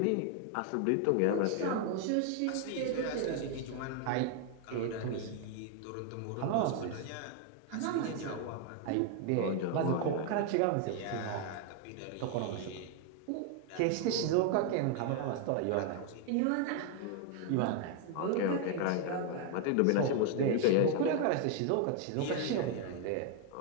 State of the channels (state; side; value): different; both; correlation 0.00